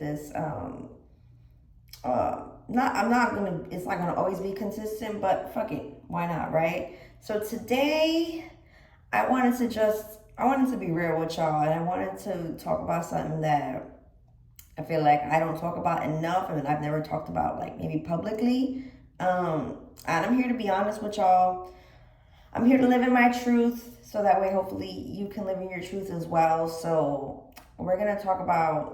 not I'm not gonna it's not gonna always be consistent, but fuck it, why not, right? So today I wanted to be real with y'all, and I wanted to talk about something that I feel like I don't talk about enough and I've never talked about like maybe publicly. And I'm here to be honest with y'all. I'm here to live in my truth so that way hopefully you can live in your truth as well. So we're gonna talk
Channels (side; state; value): both; identical; correlation 1.00